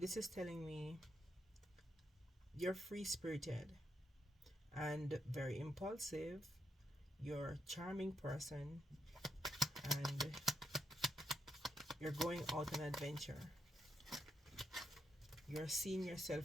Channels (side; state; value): both; normal; correlation 0.81